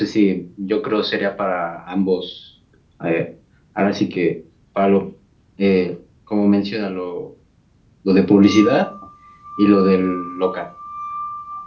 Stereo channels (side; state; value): both; identical; correlation 1.00